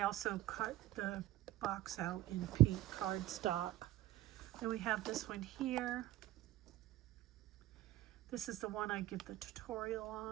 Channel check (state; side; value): quieter; left; 15.4 dB